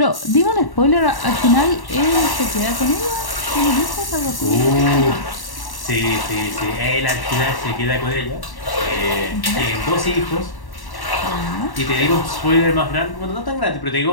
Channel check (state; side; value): late; right; 1.1 ms